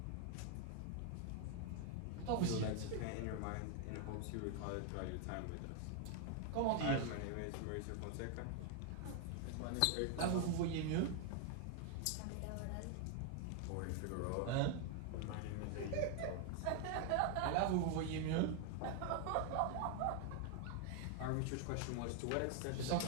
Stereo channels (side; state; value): both; different; correlation 0.00